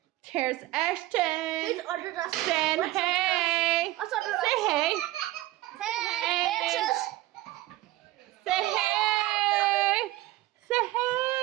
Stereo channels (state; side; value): quieter; left; 17.0 dB